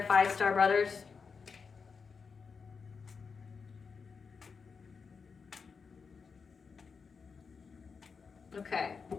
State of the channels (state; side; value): quieter; right; 5.4 dB